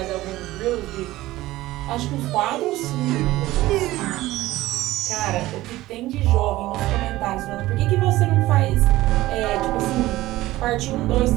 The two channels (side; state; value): left; quieter; 17.0 dB